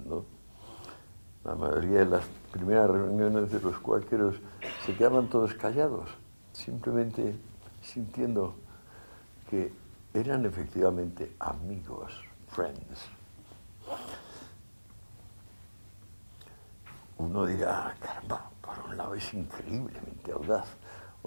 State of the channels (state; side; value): inverted; both; correlation -1.00